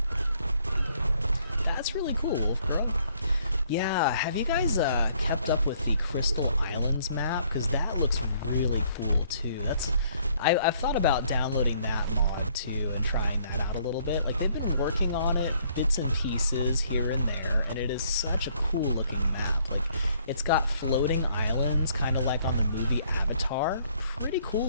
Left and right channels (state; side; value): inverted; both; correlation -0.64